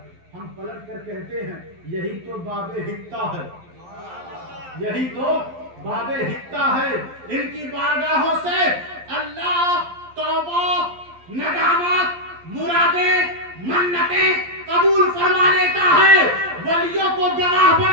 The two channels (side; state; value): left; late; 11 ms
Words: ہم پلٹ کر کہتے ہیں یہی تو باب حتہ ہے. یہی تو باب حتہ ہے. ان کی بارگاہوں سے اللہ توبہ ندامت مرادیں منتیں قبول فرما لیتا ہے. ولیوں کو گواہ